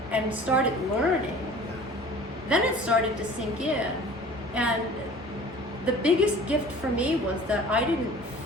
and started learning, then it started to sink in. And the biggest gift for me was that I didn't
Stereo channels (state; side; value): normal; both; correlation 0.45